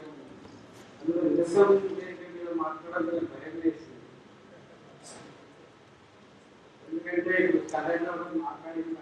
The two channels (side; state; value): both; identical; correlation 1.00